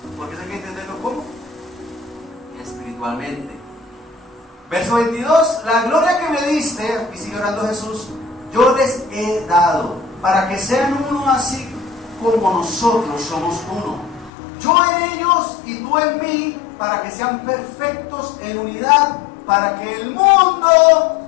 porque hay que entenderlo ¿cómo? Espiritualmente. Verso 22. La gloria que me diste, y sigue orando Jesús, yo les he dado, para que sean uno así como nosotros somos uno. Yo en ellos y tú en mí, para que sean perfectos en unidad, para que el mundo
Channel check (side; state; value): right; drops out; at 14.3 s